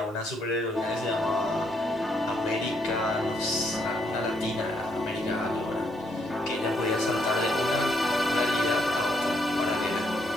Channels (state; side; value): normal; both; correlation 0.74